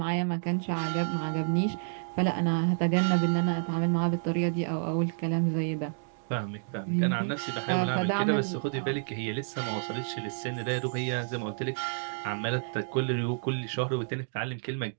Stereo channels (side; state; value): left; silent; digital silence